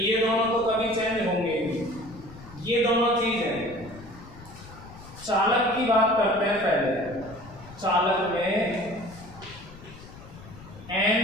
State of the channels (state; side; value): noise; left; rumble, 18 dB below the sound